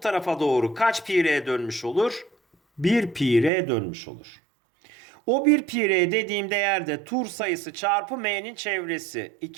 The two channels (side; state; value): left; drops out; at 3.5 s